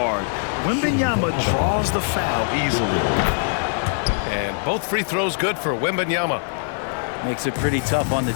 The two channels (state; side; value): silent; right; 61 dB below the other